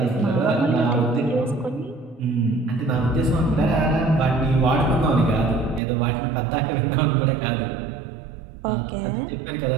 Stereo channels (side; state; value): left; drops out; at 5.8 s